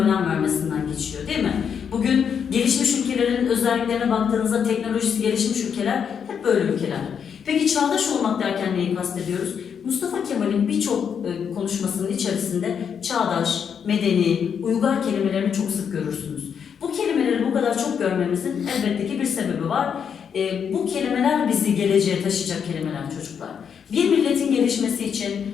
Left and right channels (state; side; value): quieter; right; 7.4 dB